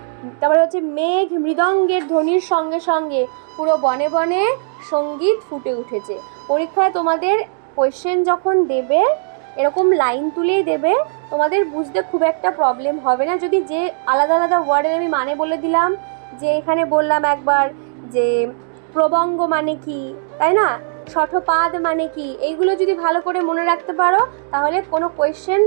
তারপরে হচ্ছে মেঘ মৃদঙ্গের ধ্বনির সঙ্গে সঙ্গে পুরো বনে বনে সঙ্গীত ফুটে উঠেছে। পরীক্ষায় তোমাদের কোয়েশ্চেন যখন দেবে এরকম লাইন তুলেই দেবে, তোমাদের বুঝতে খুব একটা প্রবলেম হবে না। যদি যে আলাদা আলাদা ওয়ার্ডের আমি মানে বলে দিলাম, যে এখানে বললাম একবার যে প্রবঙ্গ মানে কি, তাই না, শঠপাদ মানে কি, এইগুলো যদি ভালো করে মনে রাখতে পারো তাহলে কোনো কোয়েশ্চেন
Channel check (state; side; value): silent; left; digital silence